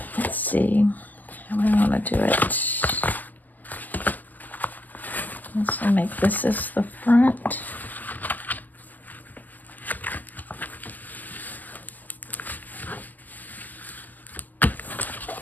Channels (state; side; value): late; right; 0.083 ms